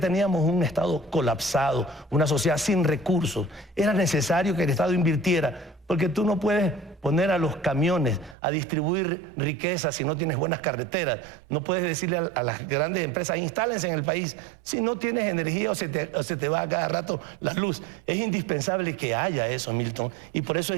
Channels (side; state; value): left; drops out; at 8.3 s